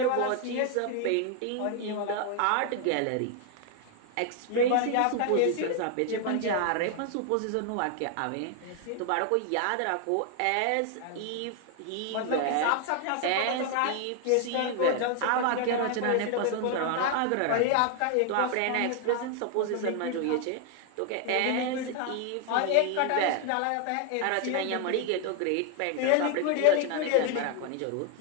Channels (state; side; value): different; both; correlation 0.00